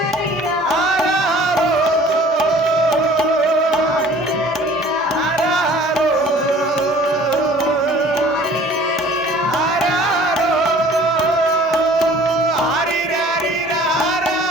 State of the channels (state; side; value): normal; both; correlation 0.50